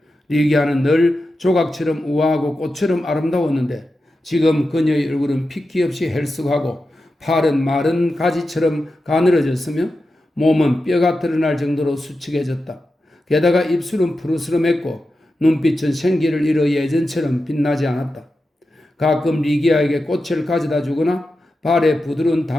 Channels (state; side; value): normal; both; correlation 0.91